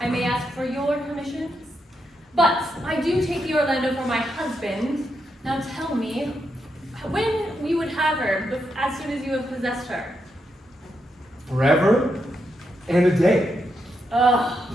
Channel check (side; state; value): both; normal; correlation 0.83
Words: may ask for your permission, but I do take thee, Orlando, for my husband. Now tell me, when we would have her, as soon as you have possessed her? Forever and a day. Ugh.